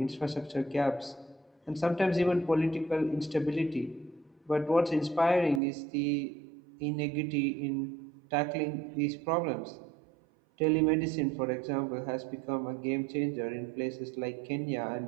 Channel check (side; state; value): left; drops out; at 5.6 s